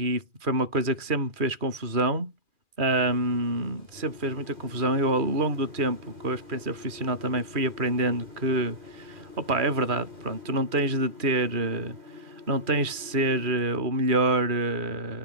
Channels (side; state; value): left; late; 2.4 ms